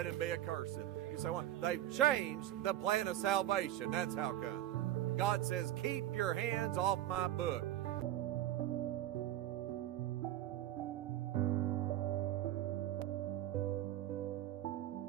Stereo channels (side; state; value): left; quieter; 13.3 dB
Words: him be accursed. You say, what? They've changed the plan of salvation. That's how come. God says, keep your hands off my book.